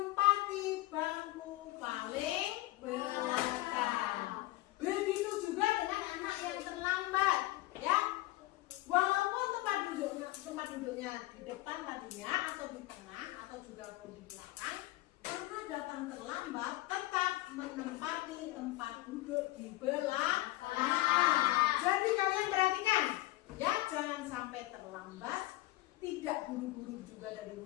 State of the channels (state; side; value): quieter; right; 18.5 dB